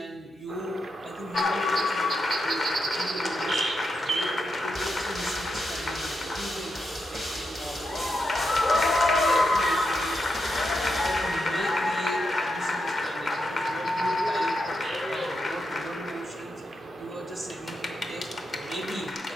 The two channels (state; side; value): normal; both; correlation 0.84